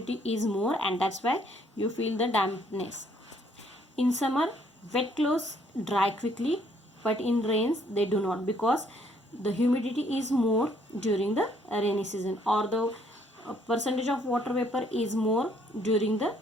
is more, and that's why you feel the dampness. In summer, wet clothes dry quickly, but in rains they do not, because the humidity is more during the rainy season, or the percentage of water vapor is more during the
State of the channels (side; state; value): both; normal; correlation 0.66